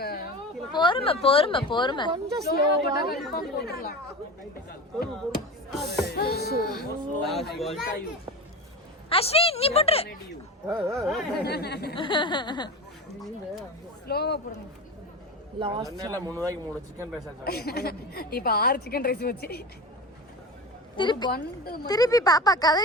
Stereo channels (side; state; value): both; normal; correlation 0.28